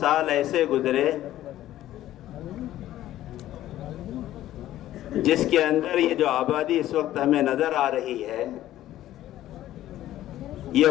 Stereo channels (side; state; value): right; quieter; 13.7 dB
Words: ایسے گزرے جس کے اندر یہ جو آبادی اس وقت ہمیں نظر آ رہی ہے یہ